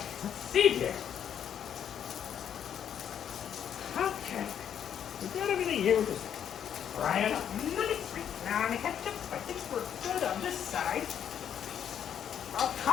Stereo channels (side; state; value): right; quieter; 9.1 dB